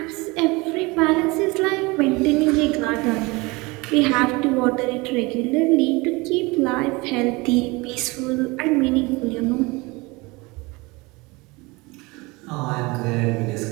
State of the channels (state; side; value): quieter; left; 24.6 dB